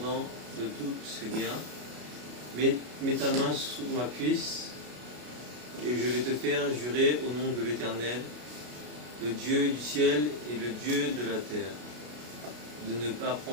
de tous ses biens, mets ta main sous ma cuisse, et je vais te faire jurer au nom de l'Éternel, le Dieu du ciel et le Dieu de la terre, de ne pas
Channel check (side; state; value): left; late; 33 ms